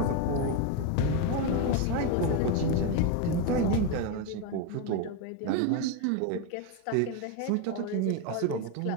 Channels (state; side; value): different; both; correlation 0.03